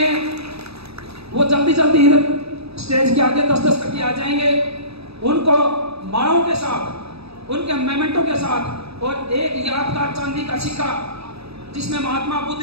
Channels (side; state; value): left; late; 0.78 ms